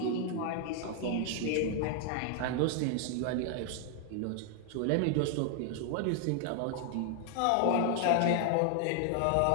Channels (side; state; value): both; different; correlation 0.00